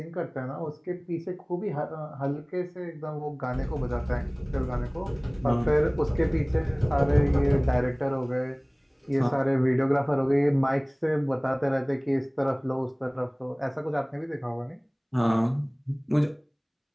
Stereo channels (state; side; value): identical; both; correlation 1.00